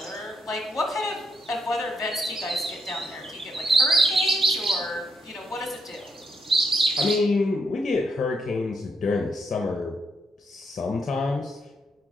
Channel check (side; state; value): both; normal; correlation 0.77